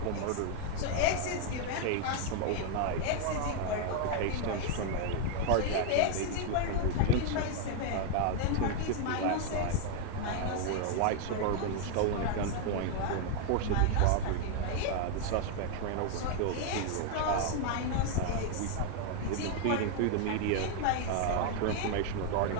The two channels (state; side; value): different; both; correlation 0.00